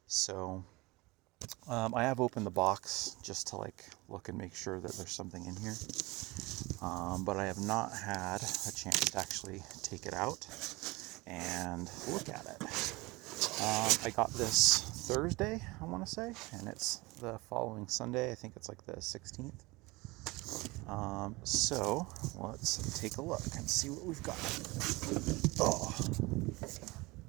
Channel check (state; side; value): quieter; left; 23.0 dB